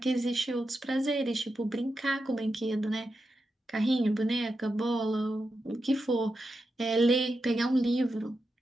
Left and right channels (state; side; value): normal; both; correlation 0.88